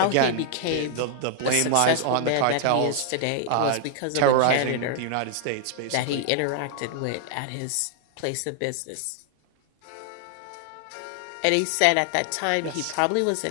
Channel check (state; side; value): different; both; correlation 0.00